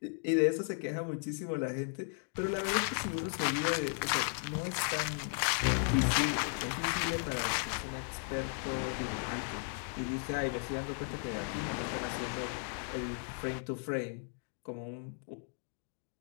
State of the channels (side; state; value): right; silent; 54 dB below the other